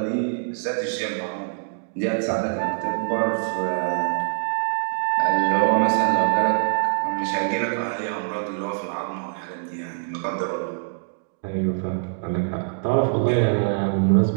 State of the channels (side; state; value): left; silent; digital silence